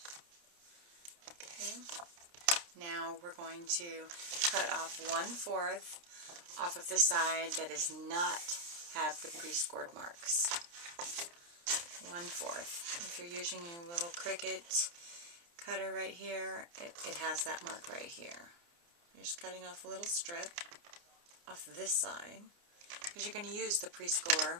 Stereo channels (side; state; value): left; late; 29 ms